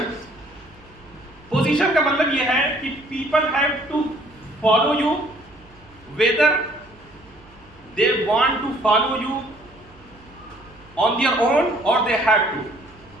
پوزیشن کا مطلب یہ ہے کہ people have to follow you whether they want to follow you on their own or they have to.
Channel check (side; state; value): right; noise; hum, 26 dB below the sound